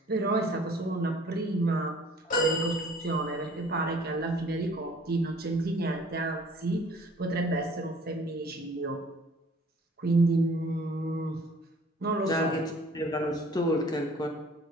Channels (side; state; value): both; normal; correlation 0.53